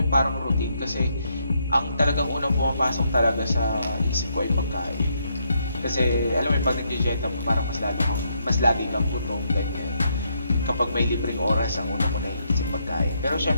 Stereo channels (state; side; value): inverted; both; correlation -0.76